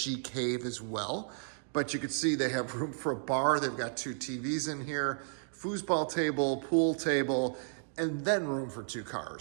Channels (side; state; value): left; silent; digital silence